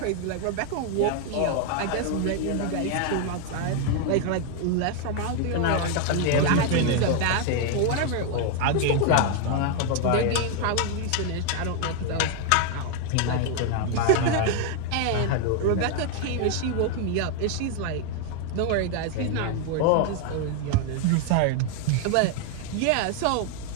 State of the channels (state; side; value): different; both; correlation 0.00